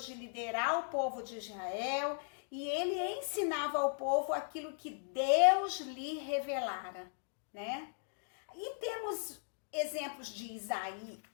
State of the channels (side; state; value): right; silent; digital silence